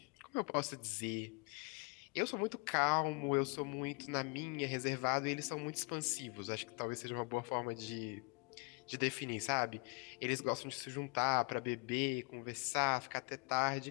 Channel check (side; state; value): right; quieter; 31.1 dB